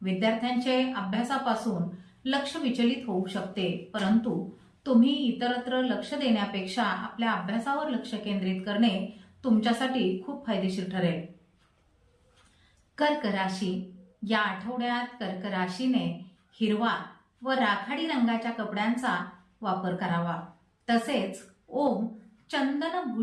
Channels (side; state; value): both; identical; correlation 1.00